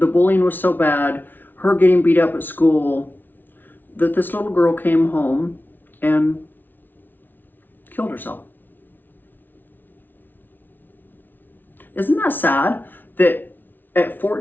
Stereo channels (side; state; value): right; late; 0.090 ms